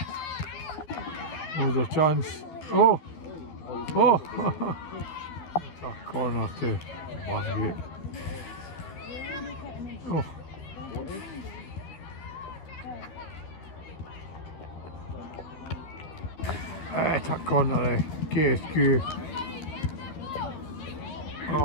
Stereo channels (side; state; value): right; late; 12 ms